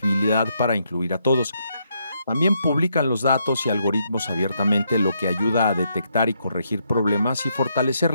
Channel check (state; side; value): inverted; both; correlation -0.76